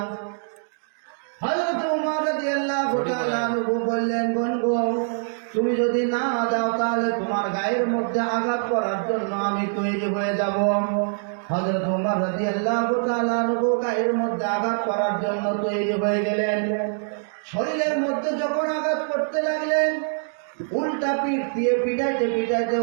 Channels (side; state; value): left; silent; digital silence